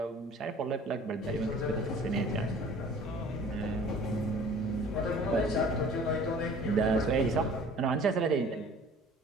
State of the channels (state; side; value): normal; both; correlation 0.48